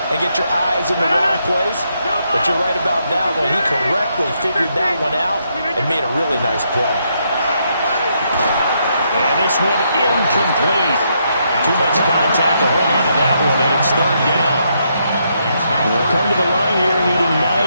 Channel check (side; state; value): both; inverted; correlation -0.77